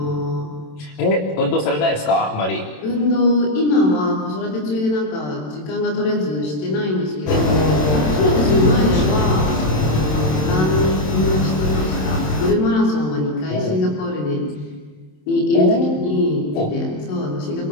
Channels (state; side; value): late; right; 27 ms